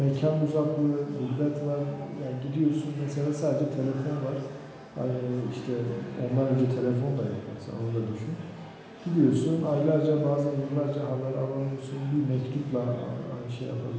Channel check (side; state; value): both; identical; correlation 1.00